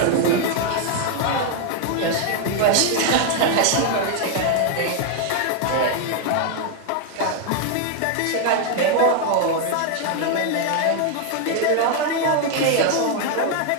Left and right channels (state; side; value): different; both; correlation 0.00